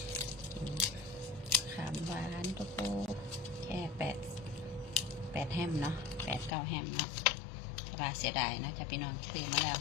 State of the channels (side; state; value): right; drops out; at 6.6 s